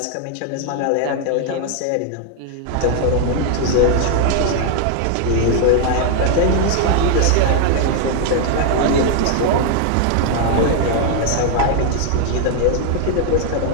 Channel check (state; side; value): different; both; correlation 0.00